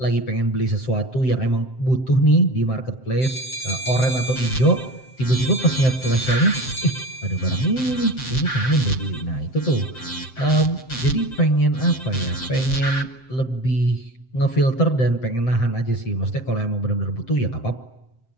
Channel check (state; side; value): late; right; 7.7 ms